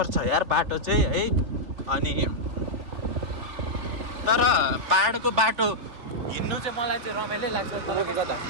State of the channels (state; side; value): late; left; 3.5 ms